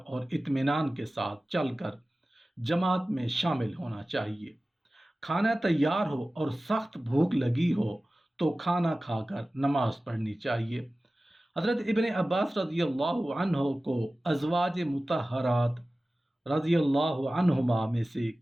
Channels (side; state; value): both; normal; correlation 0.96